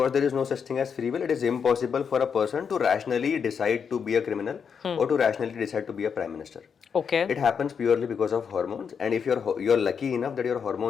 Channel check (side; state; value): right; quieter; 6.6 dB